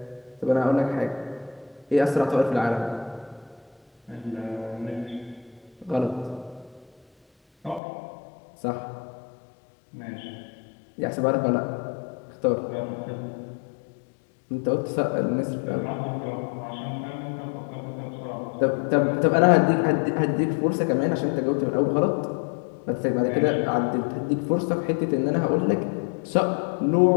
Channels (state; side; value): drops out; right; at 7.8 s